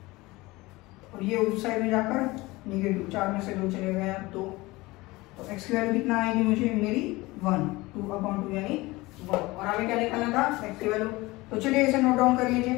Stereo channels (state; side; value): quieter; right; 21.1 dB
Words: और ये उस साइड में जाकर निगेटिव, 4 में से 2 चले गया 2, तो x की वैल्यू कितना आएगी मुझे मेरी 1, 2/2 यानी 1, और हमें क्या निकालना था x की वैल्यू। तो चलिए इसे नोट डाउन कर लीजिए।